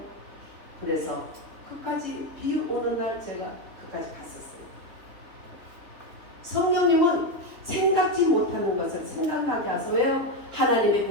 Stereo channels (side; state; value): left; late; 3.6 ms